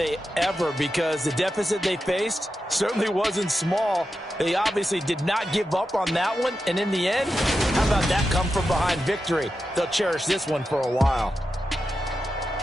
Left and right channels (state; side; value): normal; both; correlation 0.90